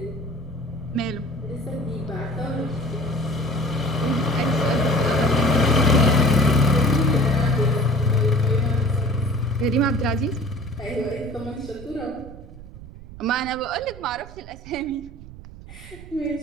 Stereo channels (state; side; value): noise; right; rumble, 16 dB below the sound